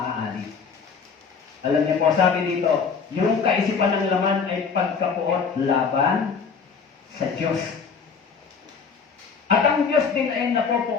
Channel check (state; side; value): quieter; right; 5.7 dB